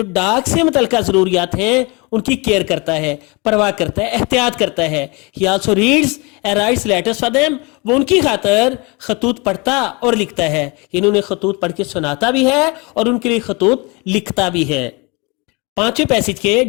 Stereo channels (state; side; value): quieter; right; 28.0 dB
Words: डाक से मुतल्लिका जरूरियात हैं उनकी केयर करता है, परवाह करता है, एहतियात करता है। ही also reads and rights letters for them, वो उनकी खातर खतूत पढ़ता और लिखता है। इन्होंने खतूत पढ़ के सुनाता भी है और उनके लिए खतूत लिखता भी है। 5वें पैसेज के